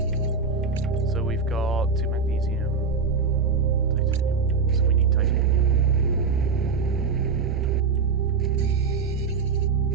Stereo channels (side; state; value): left; quieter; 5.0 dB